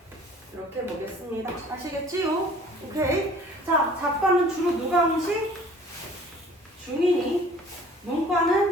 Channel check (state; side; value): normal; both; correlation 0.51